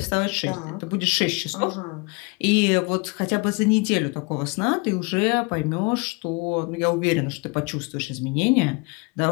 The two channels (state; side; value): quieter; right; 29.7 dB